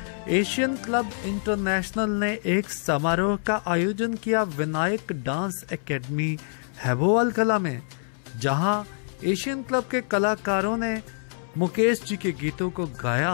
एशियन क्लब इंटरनेशनल ने एक समारोह का आयोजन किया विनायक डांस एकेडमी हैबोवाल कला में, जहां एशियन क्लब के कलाकारों ने मुकेश जी के गीतों को गाया।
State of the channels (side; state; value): right; silent; 61 dB below the other